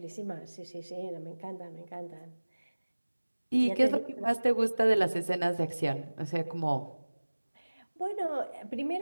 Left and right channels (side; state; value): both; inverted; correlation -1.00